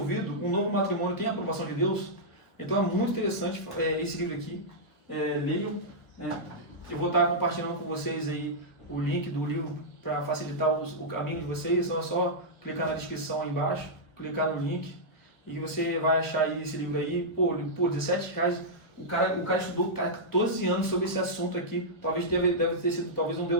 um novo matrimônio tem a aprovação de Deus? Então é muito interessante esse livro aqui. Leiam. Eu vou estar compartilhando com vocês aí o link do livro para facilitar o caminho de vocês. Então é só clicar na descrição aí embaixo, clicar no link e você vai achar aí esse livro aí. Por R$17. O cara estudou 14 anos sobre esse assunto aqui. Talvez deve ter sido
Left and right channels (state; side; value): late; right; 1.3 ms